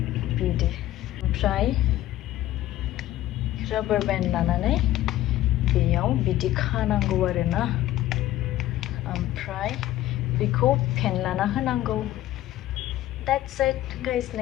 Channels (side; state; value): right; quieter; 14.3 dB